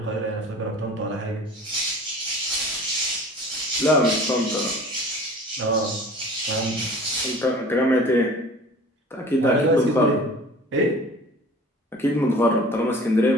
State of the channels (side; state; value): both; normal; correlation 0.43